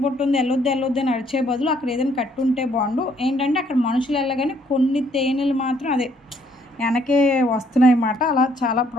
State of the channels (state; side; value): normal; both; correlation 0.66